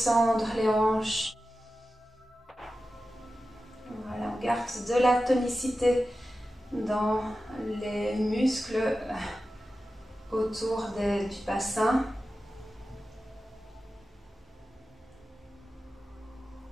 les hanches. Voilà, on garde de la tonicité dans les muscles autour du bassin.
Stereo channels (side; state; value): both; normal; correlation 0.93